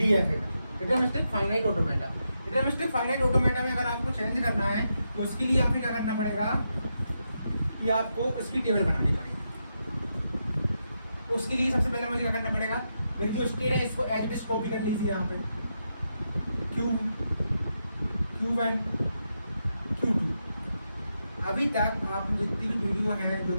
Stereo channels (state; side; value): inverted; both; correlation -0.85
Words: में, deterministic finite automata. Deterministic finite automata में अगर आपको चेंज करना है तो उसके लिए आपको क्या करना पड़ेगा कि आपको उसकी टेबल बनानी पड़ेगी। उसके लिए सबसे पहले मुझे क्या करना पड़ेगा, मेरी जो स्टेट है इसको एज इट इज कॉपी कर लीजिए यहाँ पे, Q1 Q2। अभी तक आप जितनी भी वीडियो है जो